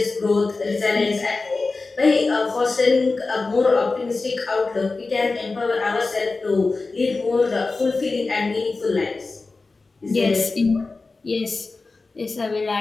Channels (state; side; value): quieter; right; 3.7 dB